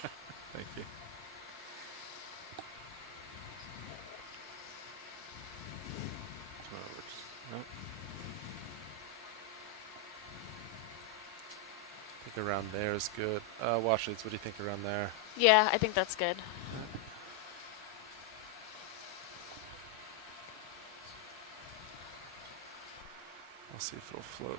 Thank you. Come over. Nope. I think around there is good. Watch leads, what do you think around there? Yeah, I think that's good. I'll see if it'll float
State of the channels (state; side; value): quieter; right; 3.8 dB